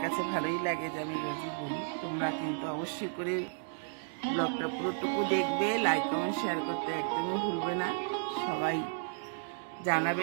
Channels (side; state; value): left; silent; 56 dB below the other